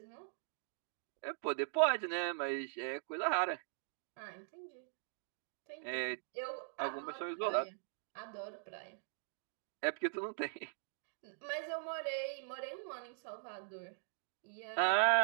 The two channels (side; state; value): left; silent; digital silence